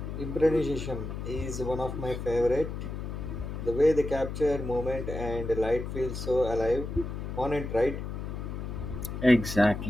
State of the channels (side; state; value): left; noise; hum, 6 dB below the sound